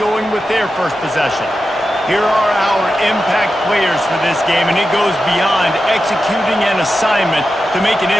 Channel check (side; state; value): both; normal; correlation 0.91